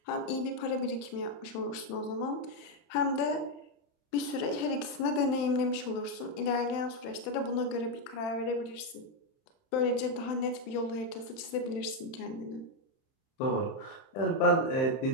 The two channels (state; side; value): late; right; 31 ms